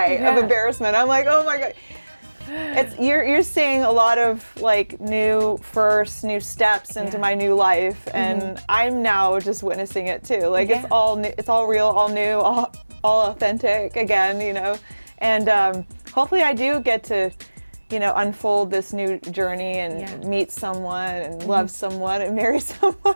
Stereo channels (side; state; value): both; inverted; correlation -1.00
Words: of embarrassment. I'm like, oh my God. You're seeing a lot of like new steps into my new life, and I'm now just witnessing it too. Like it's all new, it's all real, all new, all authentic again, you know. And hopefully I do get to, you know, unfold this new journey and meet someone and love someone and marry